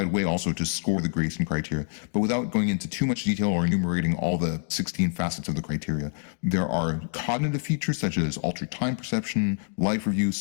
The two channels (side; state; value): right; silent; 61 dB below the other